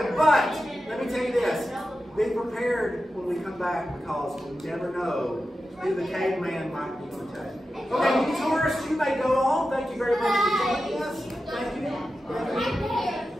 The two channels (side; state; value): both; normal; correlation 0.91